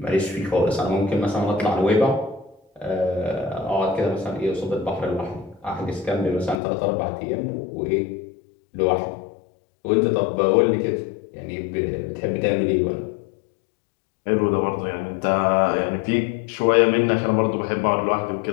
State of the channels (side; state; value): right; drops out; at 6.6 s